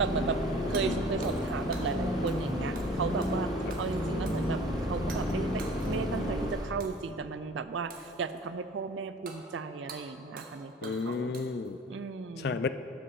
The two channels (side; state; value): both; normal; correlation 0.46